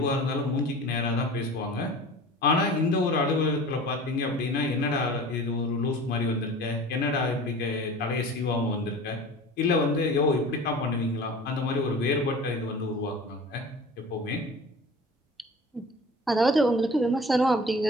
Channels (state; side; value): normal; both; correlation 0.40